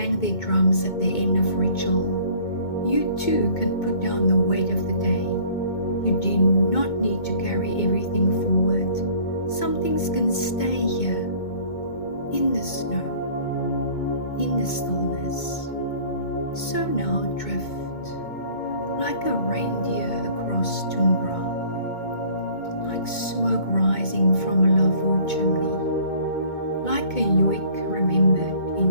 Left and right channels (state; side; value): late; right; 2.2 ms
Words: their drums at the end of ritual, you too can put down the weight of the day. You do not need to carry everything forward. Some things can stay here, in the snow, in the stillness. So now drift, like a reindeer across tundra, like smoke rising from a lavvu chimney, like a yoik remembered in